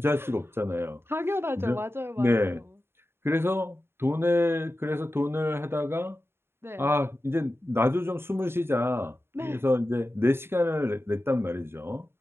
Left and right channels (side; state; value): left; late; 0.11 ms